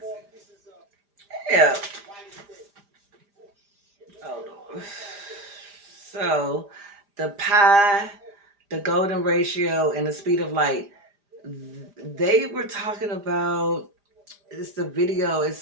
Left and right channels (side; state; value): left; late; 5.0 ms